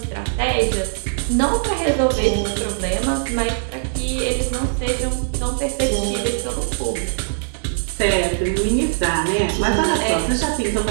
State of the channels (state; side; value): silent; left; 63 dB below the other